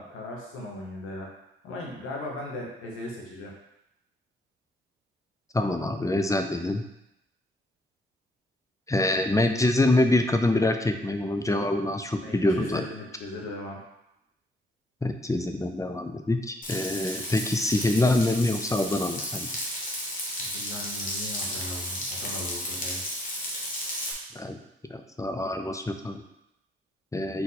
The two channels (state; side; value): normal; both; correlation 0.70